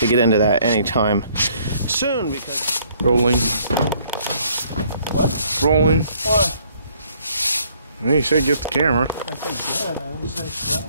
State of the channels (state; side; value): inverted; both; correlation -0.63